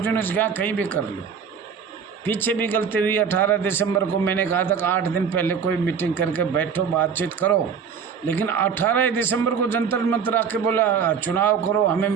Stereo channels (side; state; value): left; quieter; 6.7 dB